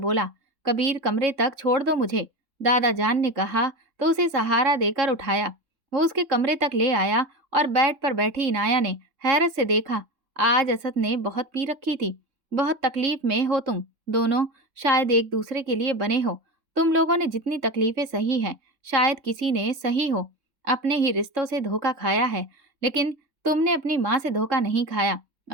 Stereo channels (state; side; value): late; left; 3.7 ms